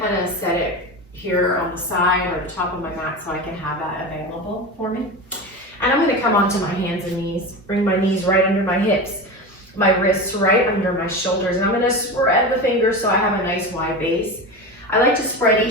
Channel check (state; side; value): normal; both; correlation 0.25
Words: of set it here on the side or the top of my mat so I can have that available for me. And I'm going to come onto my hands and knees. Bring my knees right under my hips, my wrists right under my shoulders, and I'm going to spread the fingers so I have a nice wide base. I like to spread